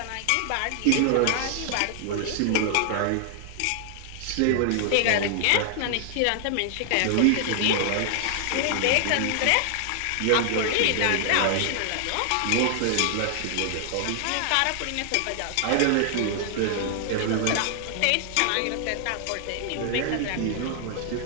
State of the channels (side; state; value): both; different; correlation 0.00